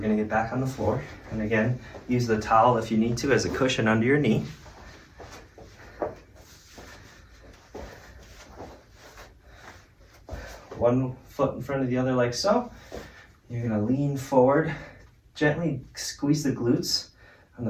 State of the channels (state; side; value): identical; both; correlation 1.00